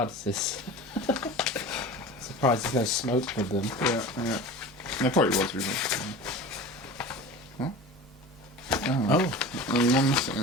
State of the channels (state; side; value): normal; both; correlation 0.35